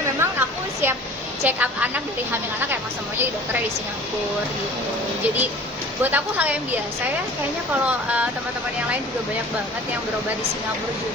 memang aku siap check up anak dari hamil anak emang semuanya di dokternya di Singapura gitu. Jadi buat aku hal yang biasa ya, kayaknya kalau teman-teman yang lain juga banyak banget yang berobat di Singapura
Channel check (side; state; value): both; normal; correlation 0.45